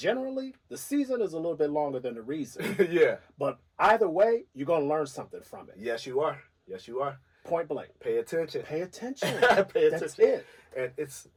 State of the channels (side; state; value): both; identical; correlation 1.00